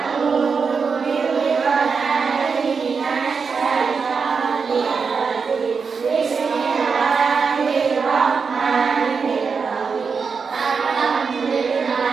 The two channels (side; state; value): left; quieter; 5.4 dB